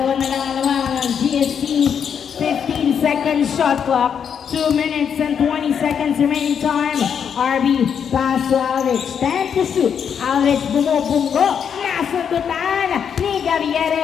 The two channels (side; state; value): right; quieter; 7.6 dB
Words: na lang ang GST. 15 seconds shot clock. 2 minutes and 20 seconds remaining time. RB pass to Aldrich. 10 to shoot. Aldrich bumubunggo. Nasundutan ni